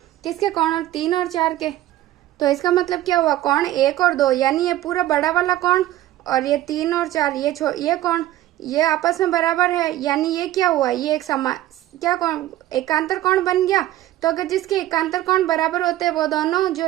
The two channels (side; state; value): left; quieter; 14.5 dB